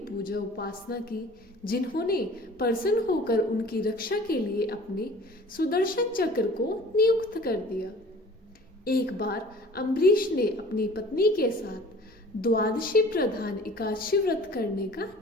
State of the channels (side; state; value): both; normal; correlation 0.46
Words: उपासना की, जिन्होंने प्रसन्न होकर उनकी रक्षा के लिए अपने सुदर्शन चक्र को नियुक्त कर दिया। एक बार अम्बरीश ने अपनी पत्नी के साथ द्वादशी प्रधान एकादशी व्रत करने का